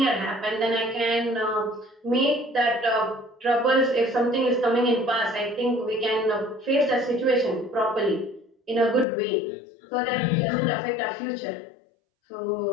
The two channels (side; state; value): right; drops out; at 9.1 s